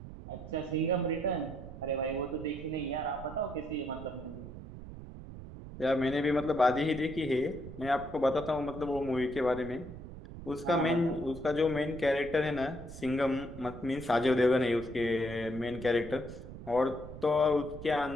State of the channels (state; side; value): noise; right; rumble, 12 dB below the sound